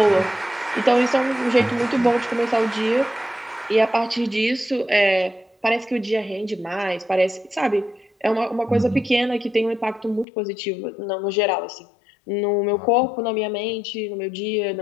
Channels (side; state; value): right; drops out; at 10.2 s